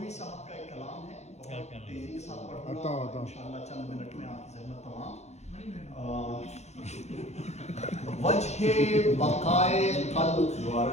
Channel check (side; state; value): right; late; 0.32 ms